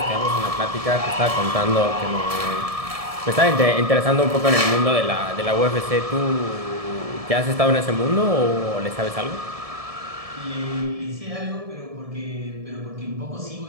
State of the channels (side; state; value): left; late; 1.7 ms